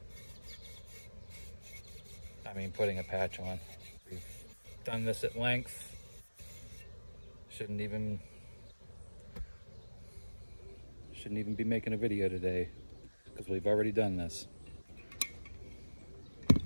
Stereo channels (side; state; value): both; inverted; correlation -1.00